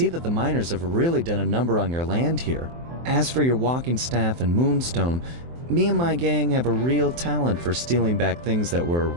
that the miners have really done a number on your land here. As for your walking staff and moonstone, me and my gang have a real talent for stealing back things that were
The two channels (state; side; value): late; left; 23 ms